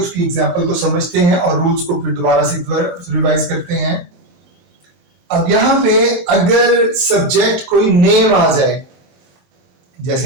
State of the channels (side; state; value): left; late; 24 ms